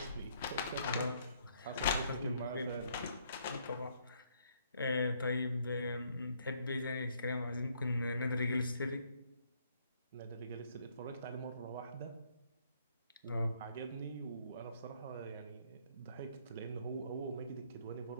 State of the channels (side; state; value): both; inverted; correlation -0.68